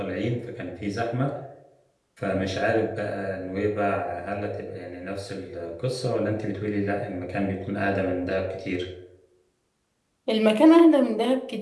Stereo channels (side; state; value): both; identical; correlation 1.00